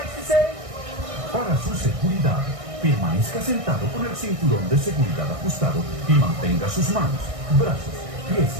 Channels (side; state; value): left; late; 1.6 ms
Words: to say, para su seguridad, permanezca sentado con el cinturón de seguridad ajustado y mantenga sus manos, brazos, pies